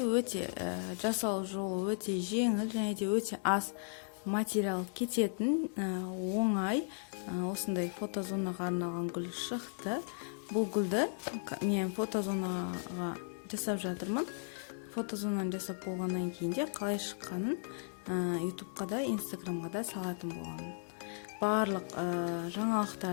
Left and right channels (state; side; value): silent; right; digital silence